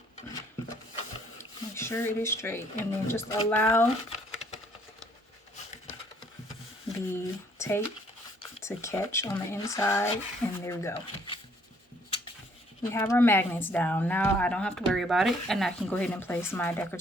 Make sure it is straight, and then just allow the tape to catch on the inside, and there we go. We have our magnets down. Now I don't have to worry about it, and I can go ahead and place my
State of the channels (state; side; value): normal; both; correlation 0.64